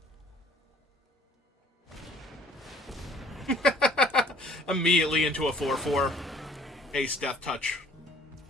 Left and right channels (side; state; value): both; normal; correlation 0.56